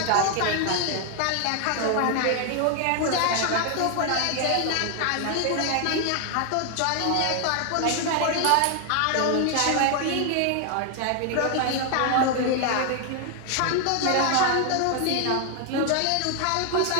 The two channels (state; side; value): different; both; correlation 0.00